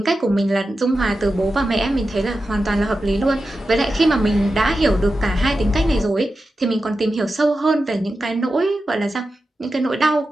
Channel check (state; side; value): normal; both; correlation 0.91